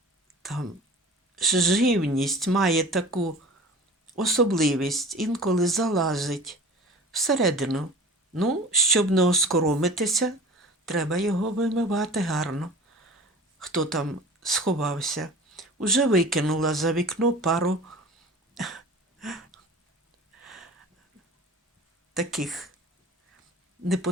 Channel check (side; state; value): both; normal; correlation 0.40